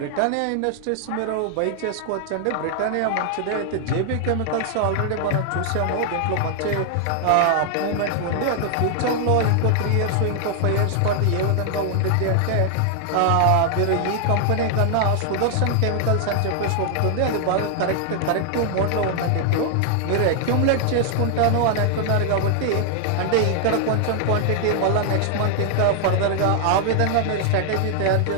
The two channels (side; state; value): both; different; correlation 0.00